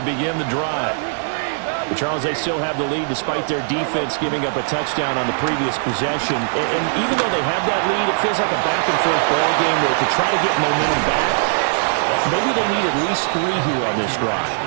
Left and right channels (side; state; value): left; silent; digital silence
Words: begin the drive. But Charles, they still have the lead despite their defense giving up a touchdown on the previous possession. And even though they have that lead, it feels like a back-and-forth ball game where to try to get momentum back, maybe they need at least 3 here on this drive.